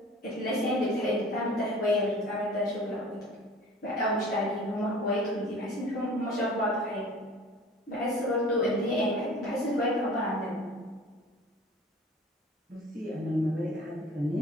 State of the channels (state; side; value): normal; both; correlation 0.44